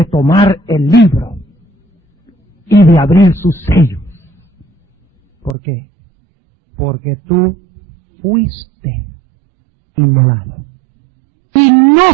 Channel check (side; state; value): left; drops out; at 5.6 s